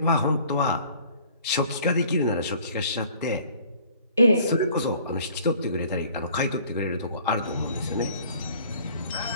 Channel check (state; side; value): inverted; both; correlation -0.53